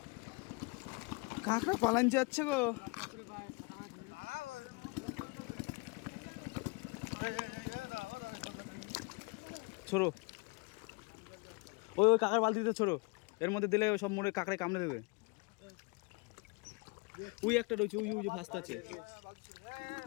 কাঁকড়া পালান যাচ্ছে গো। ছোড়ো ওই ওই কাকার বালতিতে ছোড়ো, এর মধ্যে দিলে সব মরে কাঁকড়ায় কামড়ে দেবে। ওই একটা রয়েছে, ওই ওই যে ফাস্ট আছে।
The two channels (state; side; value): quieter; right; 29.2 dB